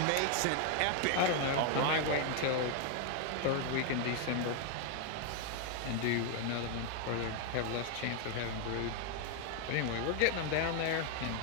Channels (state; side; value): different; both; correlation 0.01